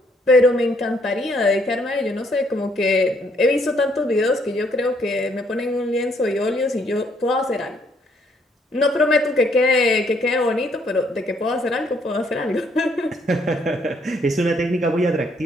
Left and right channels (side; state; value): both; normal; correlation 0.69